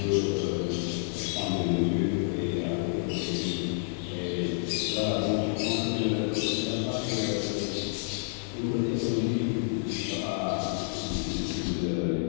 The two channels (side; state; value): right; silent; digital silence